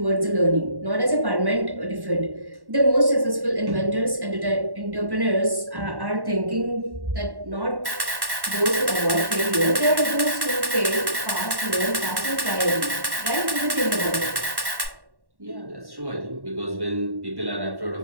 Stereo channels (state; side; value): late; left; 1.1 ms